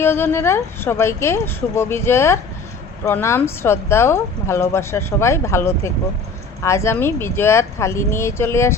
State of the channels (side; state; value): right; quieter; 4.1 dB